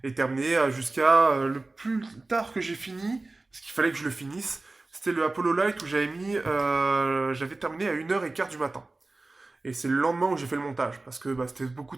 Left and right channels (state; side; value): quieter; left; 3.2 dB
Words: et terminer jusqu'à le plus tard que j'ai fini, parce qu'il fallait que je le finisse, c'était le Apollo Light où j'avais terminé à 1 h 15 du matin. Et c'est le lendemain où j'ai fait le montage, parce que c'était beaucoup